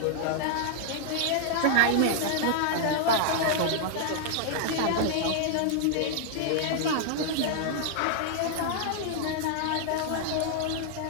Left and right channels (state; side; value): different; both; correlation -0.01